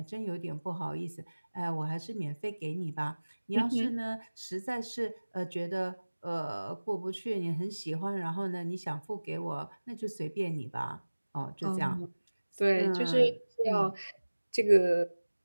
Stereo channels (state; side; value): inverted; both; correlation -1.00